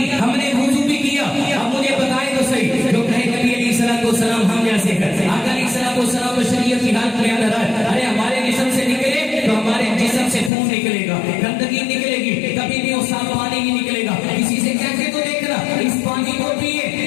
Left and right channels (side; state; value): right; drops out; at 10.5 s